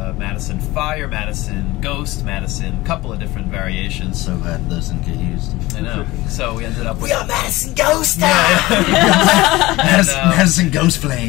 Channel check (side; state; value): right; quieter; 19.3 dB